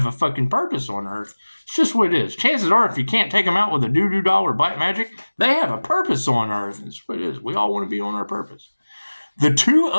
a fucking purpose on Earth. It's just what it is. Chances are, if you can't take them out with a doo-doo doll or black magic, they have a purpose on Earth. It's what it is. We all want to be on our purpose. The Two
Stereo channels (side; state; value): both; inverted; correlation -1.00